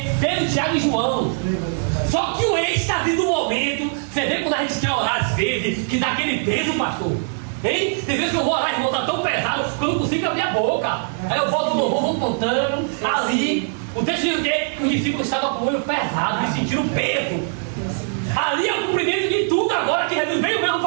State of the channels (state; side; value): silent; left; 59 dB below the other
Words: Pedro, Tiago e João. Só que o êxtase do momento, você vê quando a gente quer orar às vezes, que dá aquele peso, pastor. Hein? Tem vezes que eu vou orar, irmão, tá tão pesado que eu não consigo abrir a boca. Aí eu volto no vou contando, ali. O texto diz o quê? Que os discípulos estavam com o olho pesado e sentiram peso. Ali é o cumprimento de tudo agora que Jesus veio mesmo